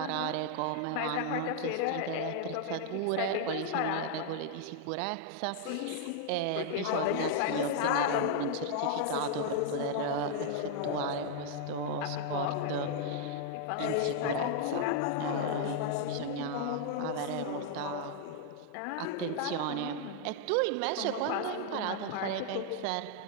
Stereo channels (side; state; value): both; different; correlation 0.00